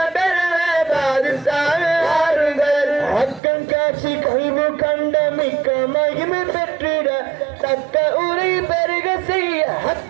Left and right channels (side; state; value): left; drops out; at 3.4 s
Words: பெருமே பாதுசாவே வாருங்கள். அக்கம் காட்சி கல்வி கண்ட மிக்க மகிமை பெற்றிட தக்க உரை பெருக செய்ய